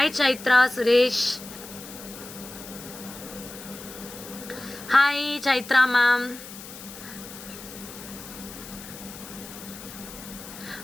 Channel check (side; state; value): left; noise; hiss, 14 dB below the sound